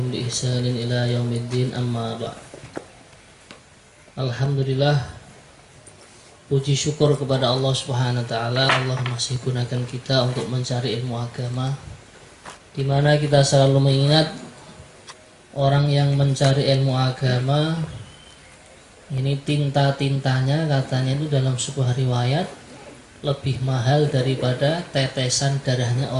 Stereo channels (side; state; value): both; identical; correlation 1.00